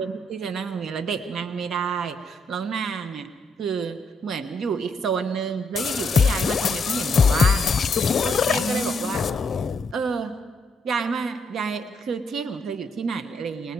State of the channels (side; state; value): both; normal; correlation 0.75